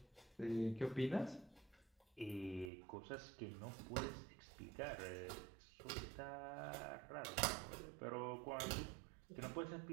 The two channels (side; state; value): left; drops out; at 2.7 s